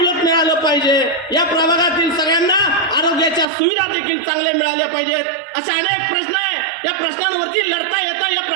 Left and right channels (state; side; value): drops out; left; at 3.5 s